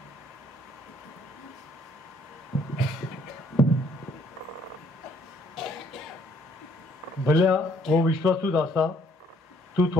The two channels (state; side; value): normal; both; correlation 0.65